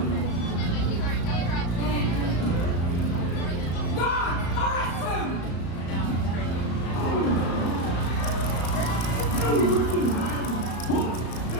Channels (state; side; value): late; right; 34 ms